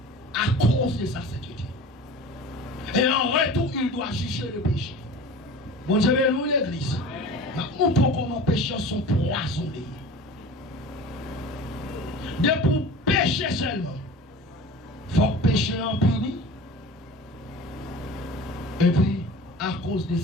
à cause de sa sainteté. Et en retour, il doit juger le péché. Bon Dieu, nous l'église. Nous pouvons comment pécheurs sont poisonnés. De pour pécher seulement, il faut pécher en puni. Et puis, à cause de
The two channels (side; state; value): both; normal; correlation 0.38